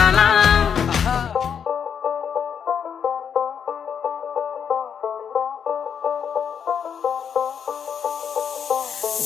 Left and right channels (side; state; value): right; quieter; 7.6 dB